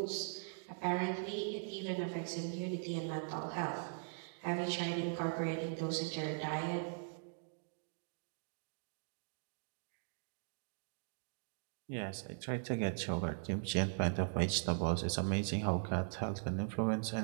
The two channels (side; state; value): left; silent; digital silence